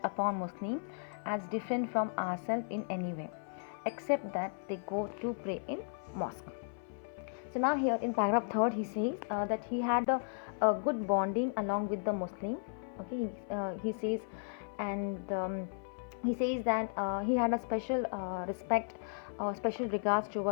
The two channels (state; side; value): silent; right; 54 dB below the other